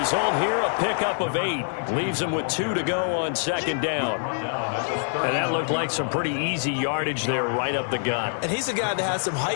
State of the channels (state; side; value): silent; right; 62 dB below the other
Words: here, a pickup of 8. Leaves him with 2 to go on second down. And that looked like some pretty easy yardage there right up the gut. And he's a guy that has some